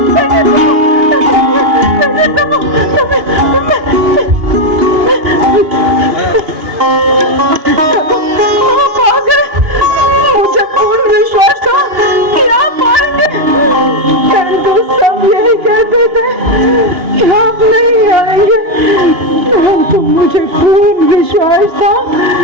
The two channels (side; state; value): left; late; 2.8 ms